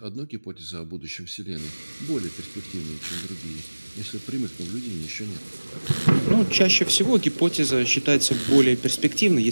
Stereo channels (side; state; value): both; inverted; correlation -1.00